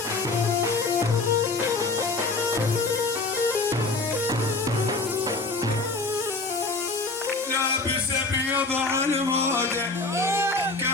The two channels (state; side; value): quieter; right; 3.5 dB